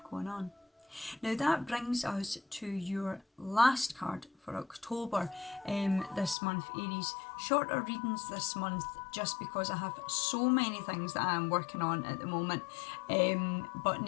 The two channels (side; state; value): right; drops out; at 6.4 s